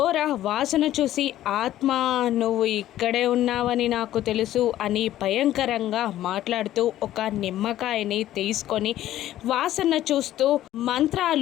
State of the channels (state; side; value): quieter; right; 13.4 dB